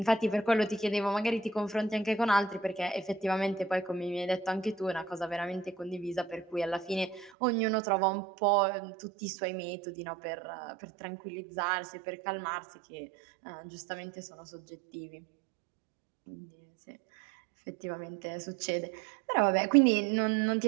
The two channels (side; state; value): left; drops out; at 7.3 s